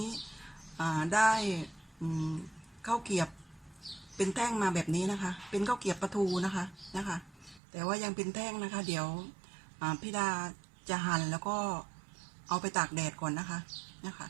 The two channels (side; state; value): left; drops out; at 7.6 s